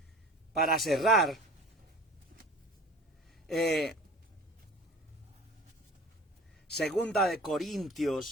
para cerrar, Segunda de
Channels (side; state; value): both; normal; correlation 0.41